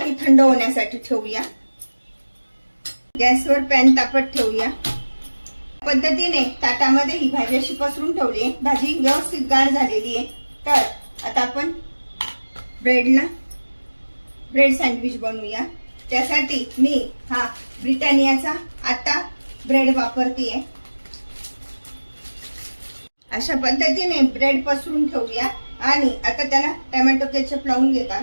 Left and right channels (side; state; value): both; inverted; correlation -1.00